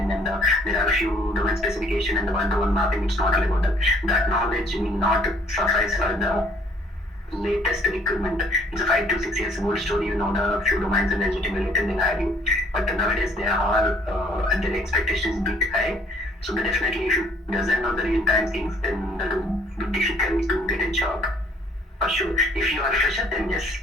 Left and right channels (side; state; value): both; normal; correlation 0.60